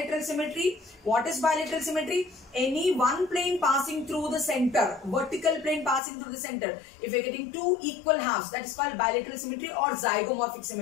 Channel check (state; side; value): drops out; right; at 6.0 s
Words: symmetry? What is bilateral symmetry? Any one plane passing through the center, vertical plane passing through the center. If you're getting two equal halves, that is called bilateral symmetry or zygomorphic